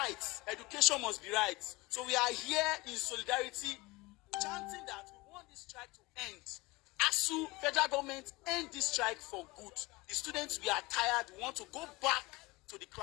education must be right. So we are here in solidarity, chanting that we want this strike to end. ASU, federal government, end this strike for good. The students, we are tired. We want to go back to the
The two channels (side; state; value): right; quieter; 22.6 dB